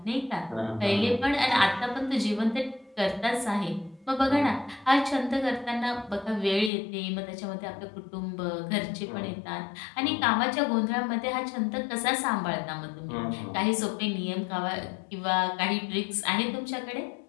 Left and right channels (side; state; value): right; drops out; at 6.7 s